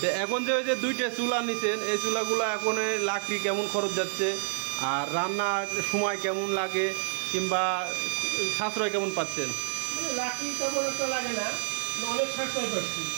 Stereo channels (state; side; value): silent; left; digital silence